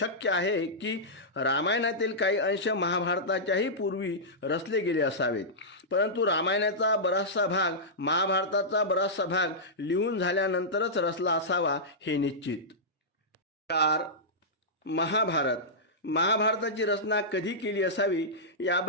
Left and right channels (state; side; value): normal; both; correlation -0.12